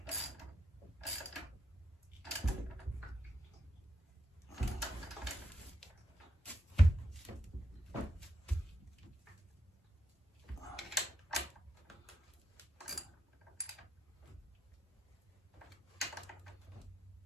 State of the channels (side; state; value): both; normal; correlation 0.82